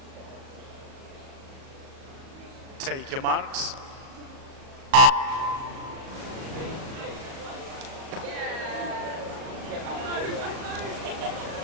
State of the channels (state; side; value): late; left; 37 ms